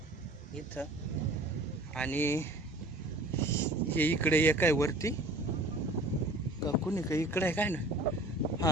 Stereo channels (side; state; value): both; normal; correlation 0.47